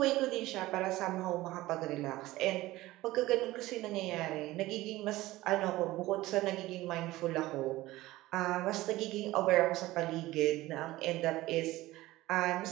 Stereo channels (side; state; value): left; quieter; 17.7 dB